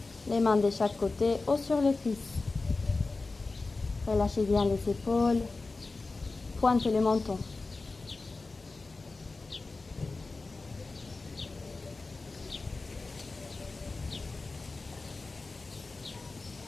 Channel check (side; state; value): right; quieter; 3.6 dB